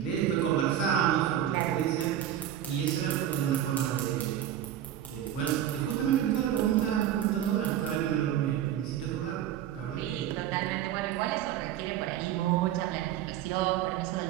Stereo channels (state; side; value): quieter; left; 11.0 dB